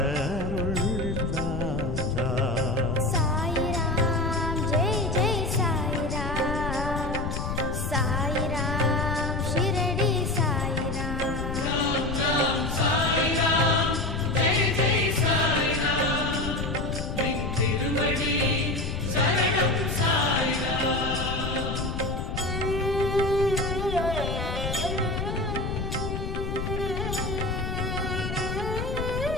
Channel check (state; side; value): noise; left; rumble, 4 dB below the sound